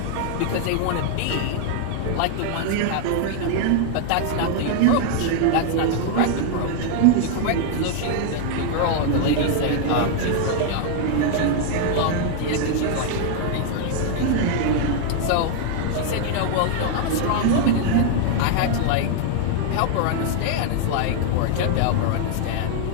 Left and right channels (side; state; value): both; different; correlation 0.00